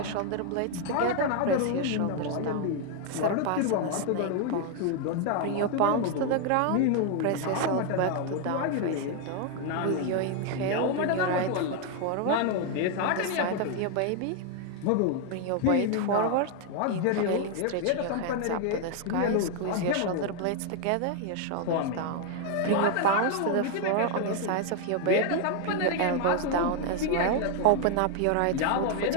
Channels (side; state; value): both; different; correlation 0.00